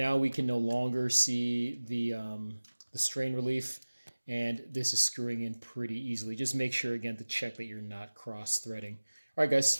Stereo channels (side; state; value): both; inverted; correlation -1.00